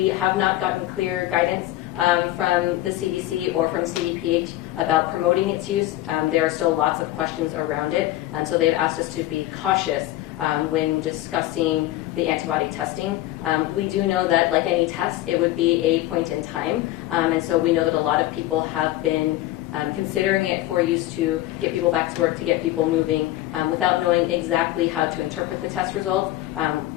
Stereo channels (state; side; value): quieter; right; 15.6 dB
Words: have not gotten clear guidance from the CDC or from CDPH about promoting its use. There are still lots of questions around it, so they've asked us to be cautious when discussing the antibody testing. We do know that, like any test, it would be a point in time, and so we know that a lot of people have been considering it for use to get people back to work, to get people moving, without knowing exactly how to interpret the test results.